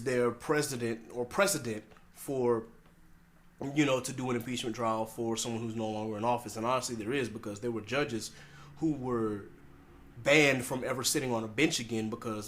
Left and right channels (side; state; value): both; identical; correlation 1.00